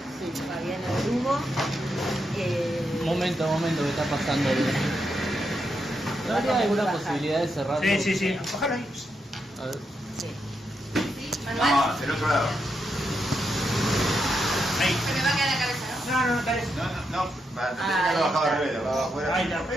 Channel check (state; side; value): normal; both; correlation 0.83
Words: Fabiana Drugo. Momento, ¿qué está pasando? ¿No habría alguna posibilidad de cerrarlo? Sí. Ojalá ahí. A ver. Sí. ¿Sí? ¿Manuel? No, del otro lado. Ahí. Se me va a quedar la cabeza, ¿no? No, dale. No, para tener que lo bajaba al revés, lo bajaba afuera. Ahí está.